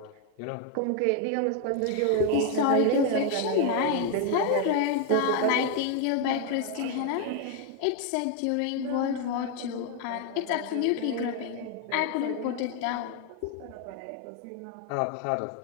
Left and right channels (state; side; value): different; both; correlation 0.01